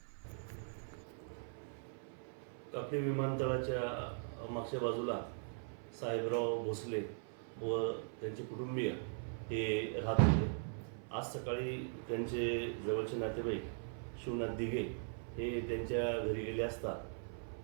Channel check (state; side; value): silent; left; 51 dB below the other